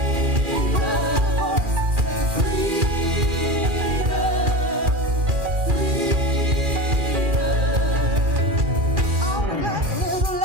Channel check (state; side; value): late; left; 2.4 ms